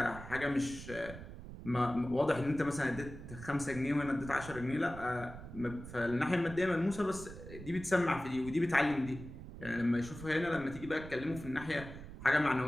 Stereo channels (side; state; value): right; noise; rumble, 13 dB below the sound